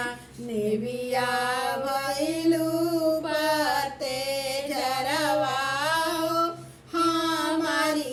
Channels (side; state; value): both; identical; correlation 1.00